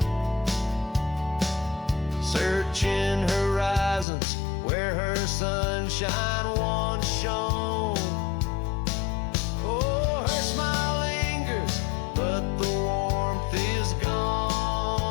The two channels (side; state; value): right; drops out; at 4.0 s